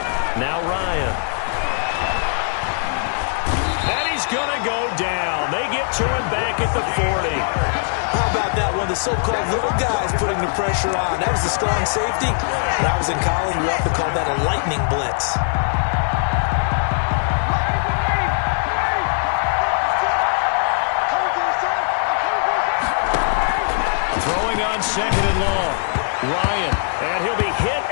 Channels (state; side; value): silent; right; 65 dB below the other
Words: Now Ryan. And he's going to go down. They get to him back at the 40. How about that one? The so-called little guys putting the pressure on. That was the strong safety. When I was in college, we often called that a lightning blitz. Throwing on 2nd and long. Ryan, and he'll be hit